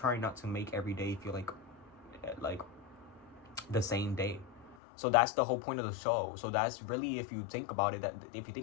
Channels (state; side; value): drops out; right; at 4.8 s